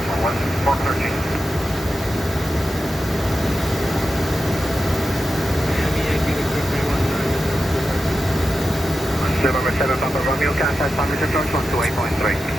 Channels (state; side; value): normal; both; correlation 0.91